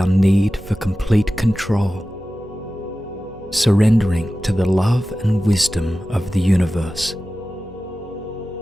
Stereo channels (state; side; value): noise; right; hum, 24 dB below the sound